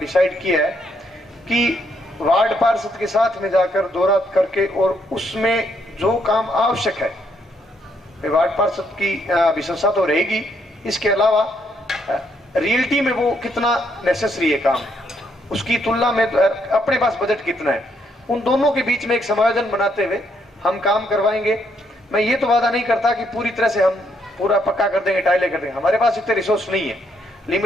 डिसाइड किया है कि वार्ड पार्षद के साथ में जाकर दौरा करके और उसमें जो काम आवश्यक है, वार्ड पार्षद की विशेषता तो रहेगी, इसके अलावा रियलिटी में वो कितना नेसेसरी है काम, उसकी तुलना में अपने पास बजट कितना है, उन दोनों के बीच में एक समायोजन बनाते हुए हम काम करवाएंगे। मैं ये तो वादा नहीं करता कि पूरी तरह से हम पूरा पक्का कर देंगे, टाइलें कर देंगे, हमारे पास इतने रिसोर्स नहीं है,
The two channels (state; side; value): normal; both; correlation 0.73